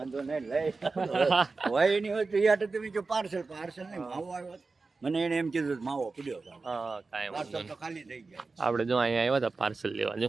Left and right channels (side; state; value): left; quieter; 4.0 dB